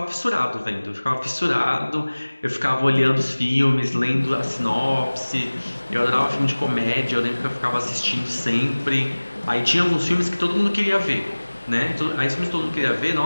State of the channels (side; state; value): both; inverted; correlation -1.00